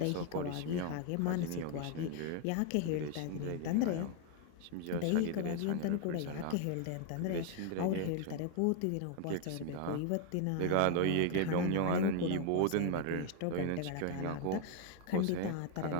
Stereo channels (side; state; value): both; different; correlation 0.00